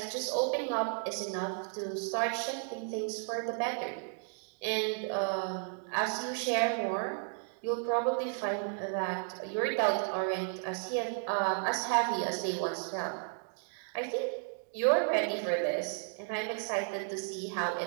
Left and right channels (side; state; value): left; silent; 55 dB below the other